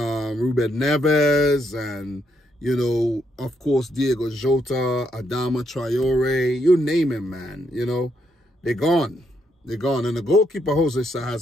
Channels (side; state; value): both; normal; correlation 0.76